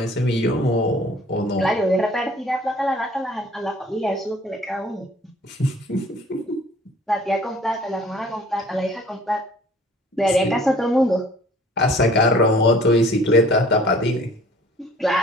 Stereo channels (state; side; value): normal; both; correlation 0.52